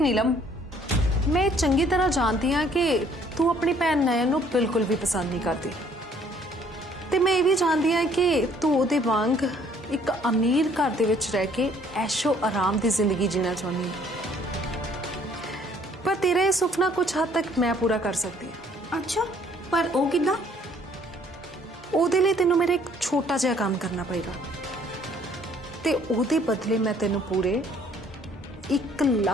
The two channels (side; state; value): both; normal; correlation 0.61